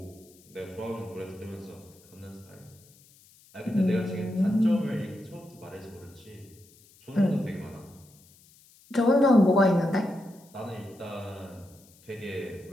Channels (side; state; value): left; noise; hiss, 27 dB below the sound